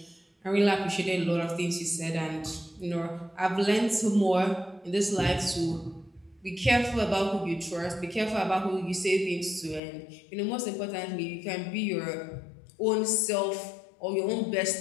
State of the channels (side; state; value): right; drops out; at 9.8 s